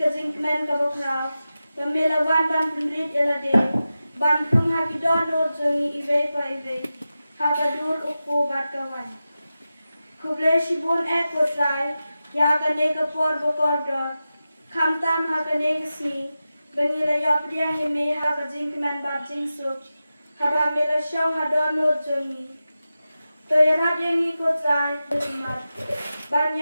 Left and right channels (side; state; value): both; inverted; correlation -0.93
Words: kabokra, yang mela wan ban penrit ela de, ban pung haki Dohnud jongi ive pa ive, hakadur ukpo bat kawan. Kuble shibun kotrai, ya kane kapor bokor dor, kamtam hakane kesni, bengila ya pdiang ime hakajingkmen bat jingsuk, haba mela shong ha Dohnud jongi. To yarat yang I kotrai, bermat,